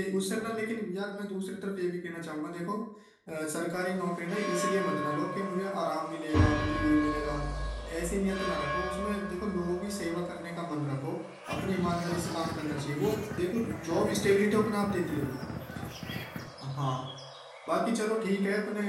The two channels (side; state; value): both; identical; correlation 1.00